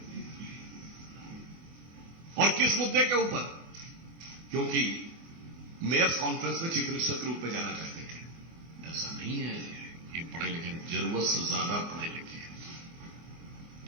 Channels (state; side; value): late; left; 24 ms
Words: और किस मुद्दे के ऊपर? क्योंकि मेयर्स कॉन्फ्रेंस में चीफ मिनिस्टर के रूप में जाना चाहते थे। ऐसा नहीं है, ये पढ़े लिखे, जरूरत से ज्यादा पढ़े लिखे हैं।